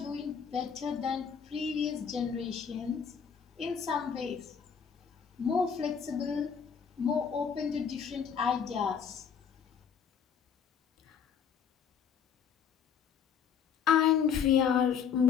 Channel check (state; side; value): quieter; right; 7.2 dB